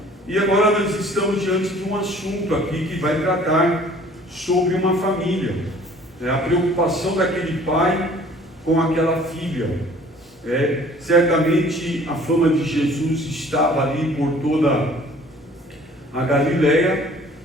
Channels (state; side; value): normal; both; correlation 0.53